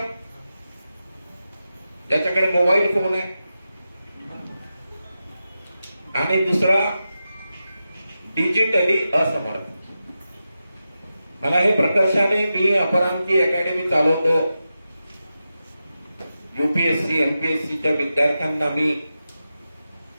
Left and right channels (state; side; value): inverted; both; correlation -0.91